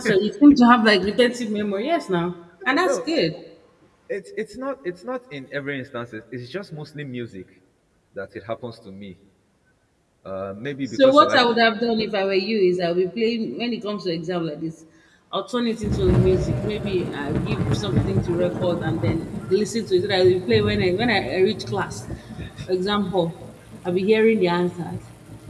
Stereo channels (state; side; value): identical; both; correlation 1.00